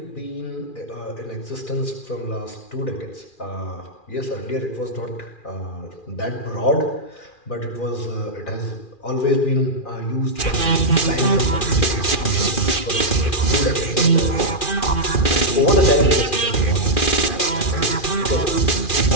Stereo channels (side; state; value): right; late; 2.4 ms